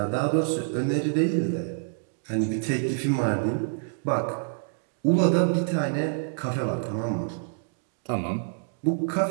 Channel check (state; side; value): silent; left; digital silence